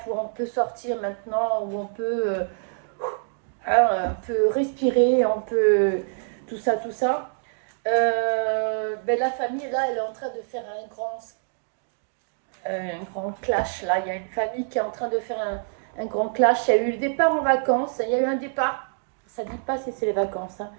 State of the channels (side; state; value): left; silent; digital silence